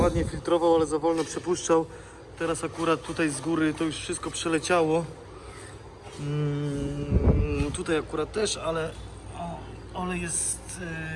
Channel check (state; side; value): identical; both; correlation 1.00